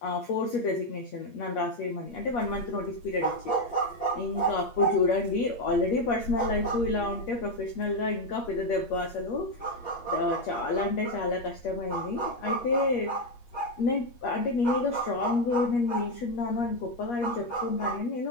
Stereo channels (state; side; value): late; right; 8.4 ms